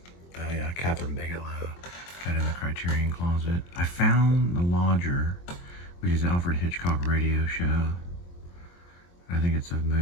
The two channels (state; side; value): late; right; 23 ms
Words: Oh yeah, Catherine Bigelow. Got in the Criterion Closet. I found The Lodger, which is an Alfred Hitchcock radio show. I think it's a